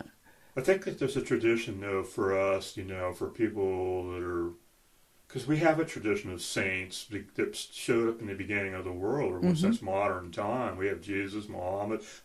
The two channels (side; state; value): both; identical; correlation 1.00